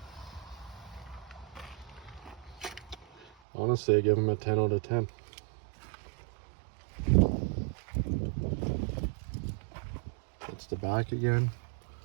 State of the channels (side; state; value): left; drops out; at 3.2 s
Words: Honestly, I give them a 10 out of 10. That's the back again.